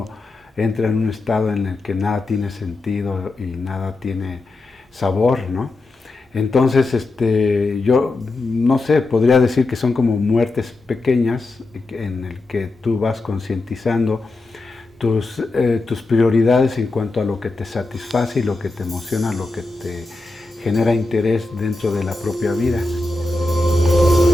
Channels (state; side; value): quieter; right; 3.0 dB